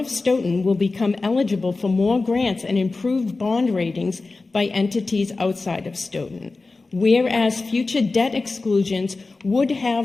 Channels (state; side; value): quieter; right; 3.6 dB